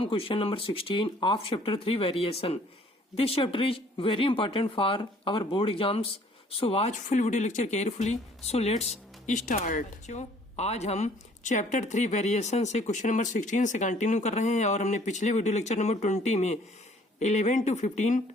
question number 16 of chapter 3 variation. This chapter is very important for our board exams. So watch full video lecture carefully. So let's start. बच्चों, आज हम chapter 3 variation से question number 16 से continue कर रहे हैं और हमने पिछले वीडियो लेक्चर नंबर 20 में 11 to 15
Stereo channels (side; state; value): both; normal; correlation 0.58